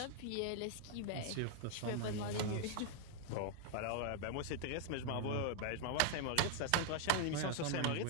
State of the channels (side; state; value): both; different; correlation 0.00